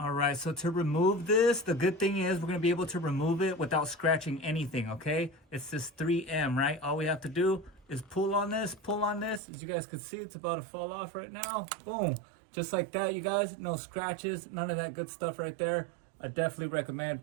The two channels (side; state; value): left; drops out; at 9.4 s